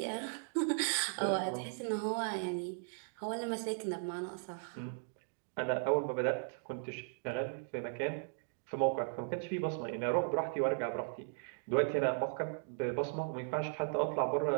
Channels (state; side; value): silent; left; digital silence